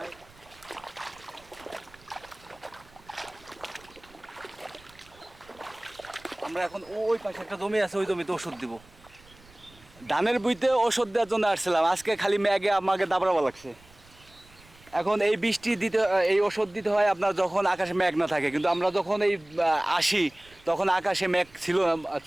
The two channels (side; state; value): right; noise; rumble, 26 dB below the sound